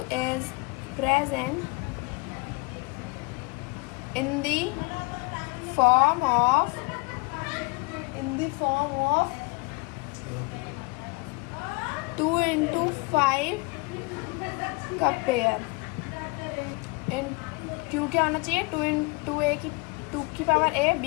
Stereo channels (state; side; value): quieter; right; 27.9 dB